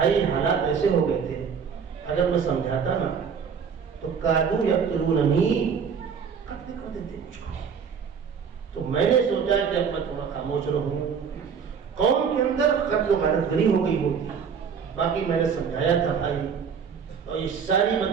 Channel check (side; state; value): left; quieter; 6.6 dB